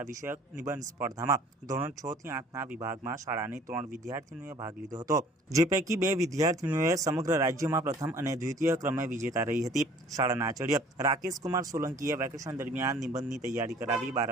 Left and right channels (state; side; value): normal; both; correlation 0.52